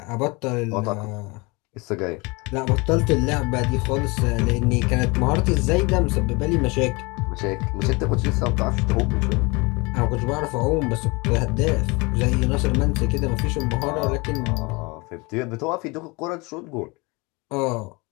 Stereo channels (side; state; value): right; quieter; 26.6 dB